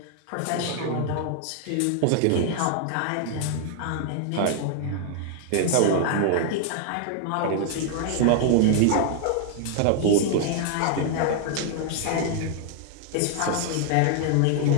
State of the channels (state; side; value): different; both; correlation 0.00